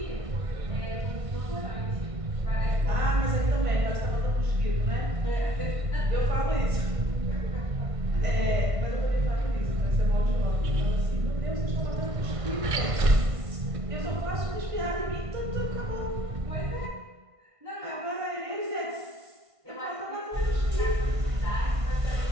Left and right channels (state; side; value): late; left; 1.5 ms